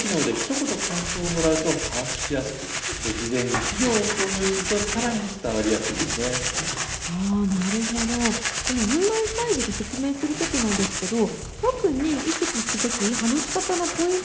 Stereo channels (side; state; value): both; identical; correlation 1.00